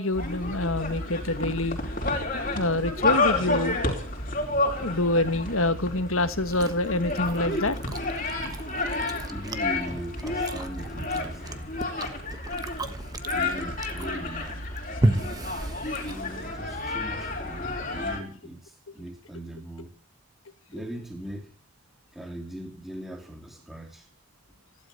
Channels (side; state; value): both; normal; correlation 0.08